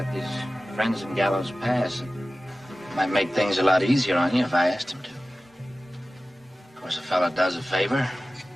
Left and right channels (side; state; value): both; normal; correlation 0.96